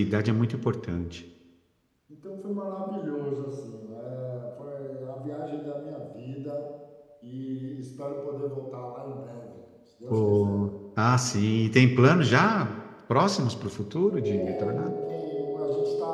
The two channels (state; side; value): identical; both; correlation 1.00